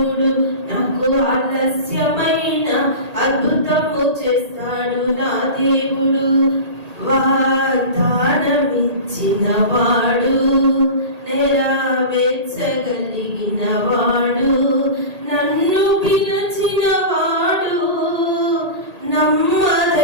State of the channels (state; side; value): late; left; 1.8 ms